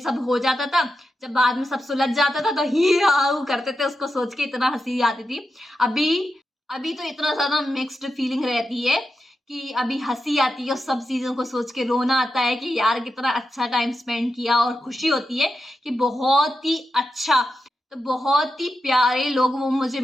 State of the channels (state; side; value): normal; both; correlation 0.88